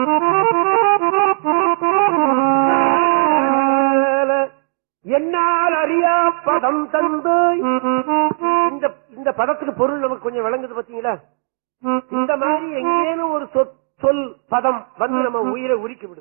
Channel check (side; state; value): left; silent; digital silence